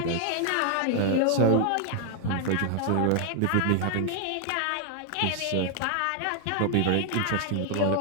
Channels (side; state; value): both; different; correlation 0.00